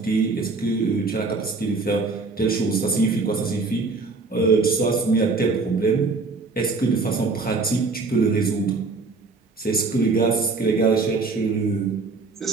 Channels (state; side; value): quieter; left; 4.0 dB